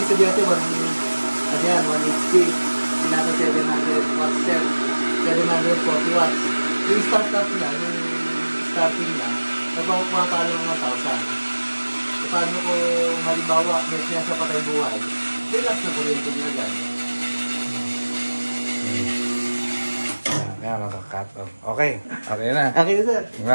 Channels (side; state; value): both; inverted; correlation -1.00